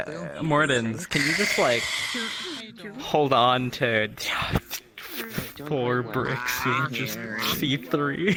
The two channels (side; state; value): both; identical; correlation 1.00